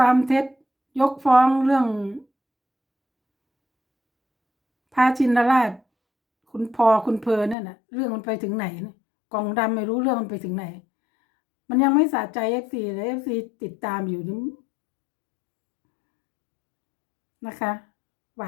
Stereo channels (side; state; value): right; drops out; at 7.6 s